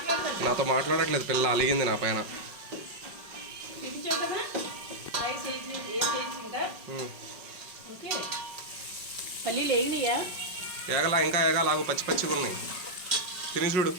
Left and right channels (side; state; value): left; late; 5.4 ms